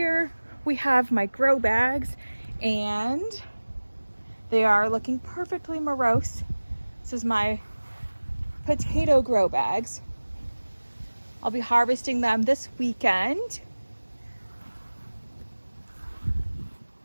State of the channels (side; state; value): both; inverted; correlation -1.00